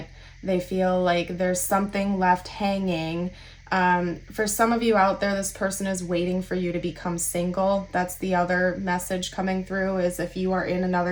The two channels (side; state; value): both; identical; correlation 1.00